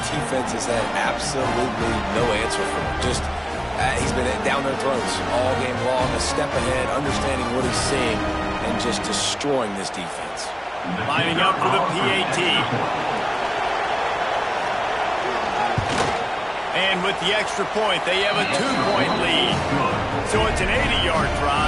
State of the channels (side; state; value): both; identical; correlation 1.00